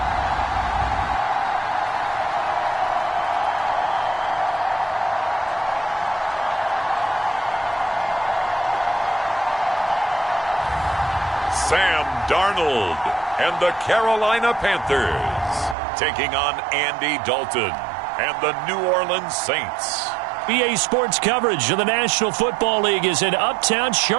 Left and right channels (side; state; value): left; drops out; at 15.8 s